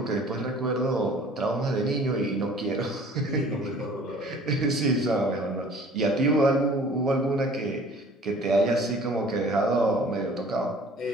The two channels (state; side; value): normal; both; correlation 0.50